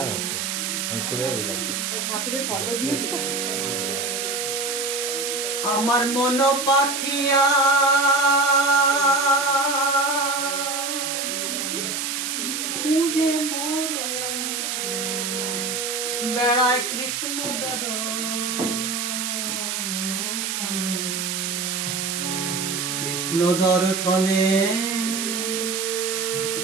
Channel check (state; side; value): noise; right; hiss, 2 dB below the sound